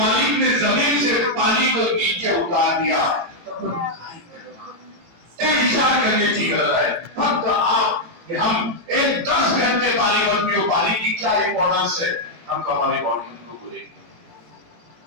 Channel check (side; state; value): left; late; 17 ms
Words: ने जमीन से पानी को नीचे उतार दिया, विचार करने की गरज है। फक्त आप कि हम एक 10 घंटे पानी मत पियो, पानी की क्या इंपॉर्टेंस है, हम हमारी बॉडी को बोले